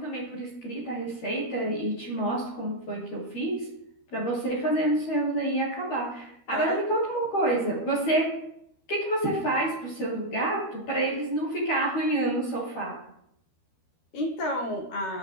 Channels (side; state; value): right; late; 13 ms